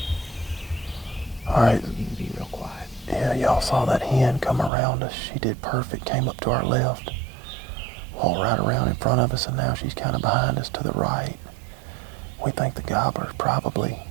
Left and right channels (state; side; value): drops out; left; at 4.7 s